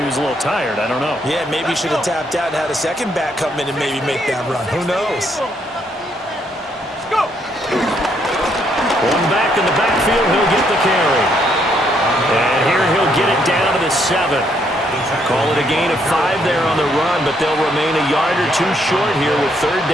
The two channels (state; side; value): normal; both; correlation 0.72